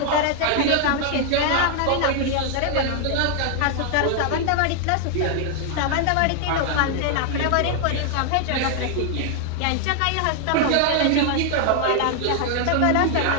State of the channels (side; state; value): both; different; correlation 0.00